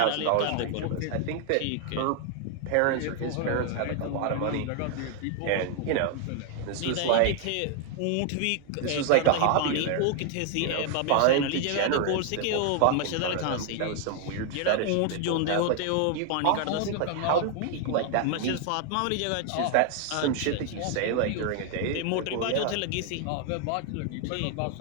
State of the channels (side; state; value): both; different; correlation 0.00